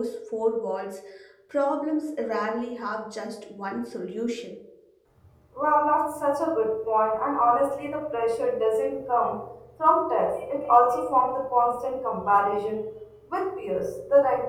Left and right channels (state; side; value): identical; both; correlation 1.00